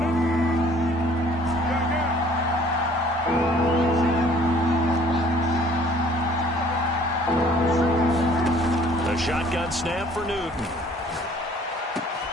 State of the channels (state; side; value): normal; both; correlation 0.56